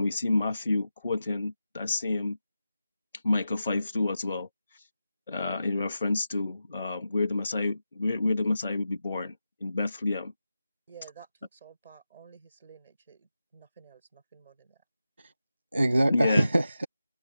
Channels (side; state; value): both; inverted; correlation -0.91